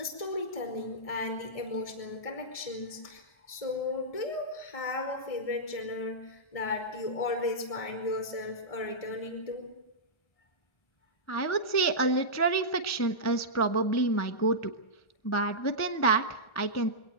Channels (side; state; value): right; late; 1.4 ms